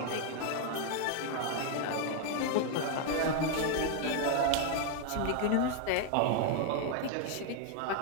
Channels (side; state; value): both; different; correlation 0.01